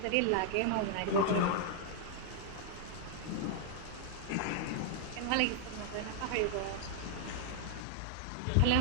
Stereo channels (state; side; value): different; both; correlation 0.00